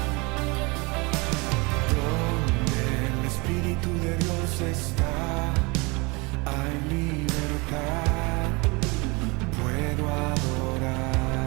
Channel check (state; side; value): quieter; left; 27.1 dB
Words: Está, hay libertad, puedo